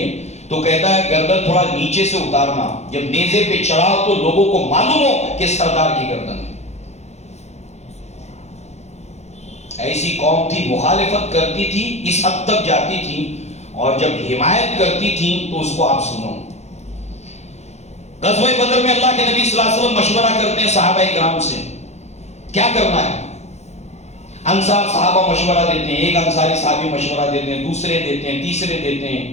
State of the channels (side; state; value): right; late; 0.32 ms